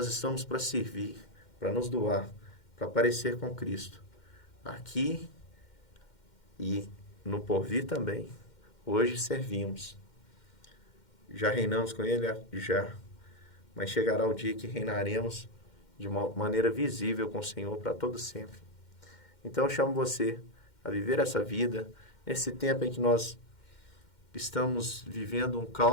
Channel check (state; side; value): late; right; 2.1 ms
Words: estamos para servir, para nos doar, para parecer com Cristo. Aqui e no porvir também. Hoje servimos. Já reinamos com Ele? Já. Mas chegará o dia que reinaremos de uma maneira visível com o Senhor para todo sempre. Então eu chamo você a viver essa vida, nesse tempo em que nós estamos vivendo um